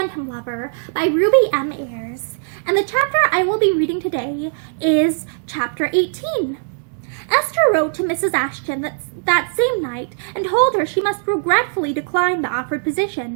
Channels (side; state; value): left; silent; digital silence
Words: Lover by Ruby M. Ayres, and the chapter I will be reading today is Chapter 18. Esther wrote to Mrs. Ashton that same night and told her she must regretfully decline the offered